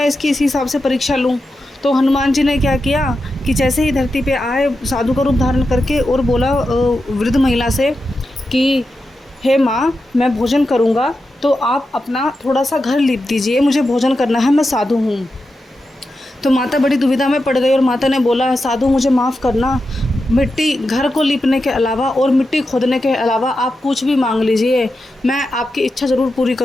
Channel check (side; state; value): both; normal; correlation 0.89